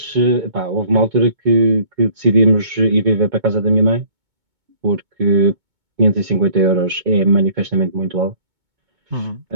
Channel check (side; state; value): left; late; 2.2 ms